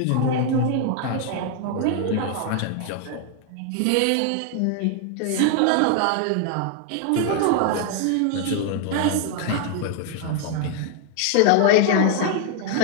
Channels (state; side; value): different; both; correlation 0.00